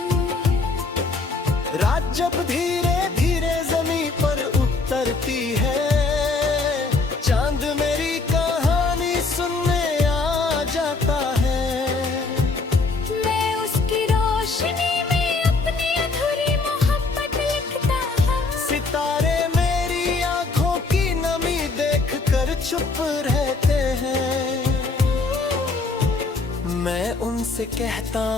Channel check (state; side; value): quieter; right; 3.8 dB